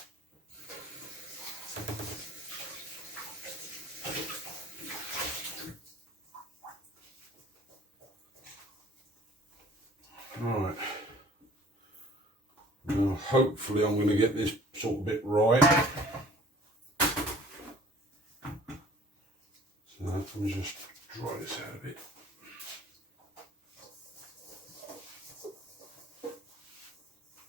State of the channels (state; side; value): normal; both; correlation 0.52